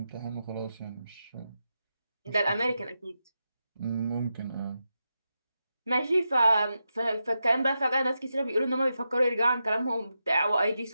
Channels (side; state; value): both; inverted; correlation -0.88